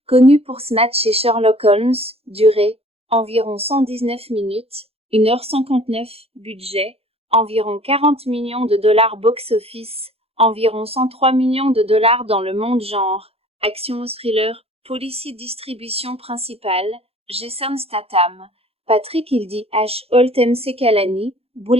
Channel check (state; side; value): late; left; 0.29 ms